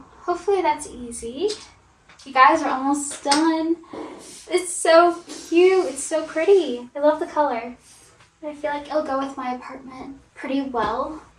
hopefully that's easy. You guys are almost done. It's so cute, it's so pretty. I love the color. I feel like it'll go with my apartment pretty well.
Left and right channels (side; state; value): both; identical; correlation 1.00